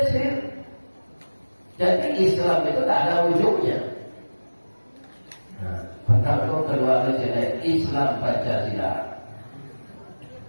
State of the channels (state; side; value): inverted; both; correlation -1.00